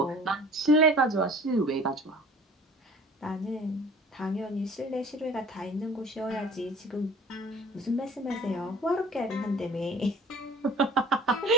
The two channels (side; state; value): both; normal; correlation 0.45